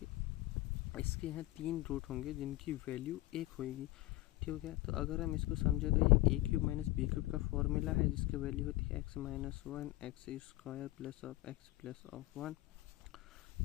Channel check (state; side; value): quieter; right; 18.2 dB